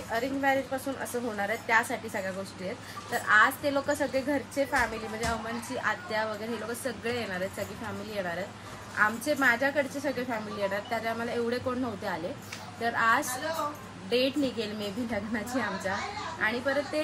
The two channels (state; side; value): identical; both; correlation 1.00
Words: अरेंज मॅरेज पासून असं होणार आहे, त्यासाठी सगळ्या गोष्टी आहेत. तर आज ते लोक सगळे घरचे फॅमिली म्हणजे अमनची आत्या वगैरे हे लोक सगळे येणार आहेत, सगळी फॅमिली येणार आहेत. माझ्याकडचे सगळे फॅमिली येणार, त्याच्या आम्हाला एवढे कोण नव्हते आले. तर आज डेट निघेल मे बी लग्नाची आमच्या. आणि परत